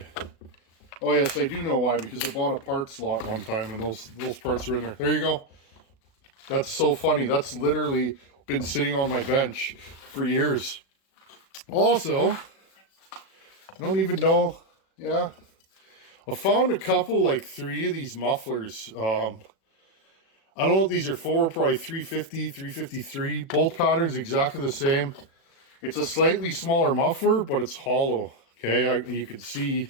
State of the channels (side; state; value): right; late; 37 ms